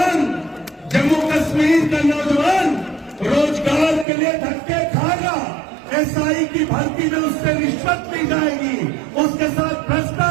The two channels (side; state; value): left; drops out; at 4.0 s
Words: जम्मू कश्मीर का नौजवान रोजगार के लिए धक्के खाएगा। एसआई की भर्ती में उससे रिश्वत ली जाएगी, उसके साथ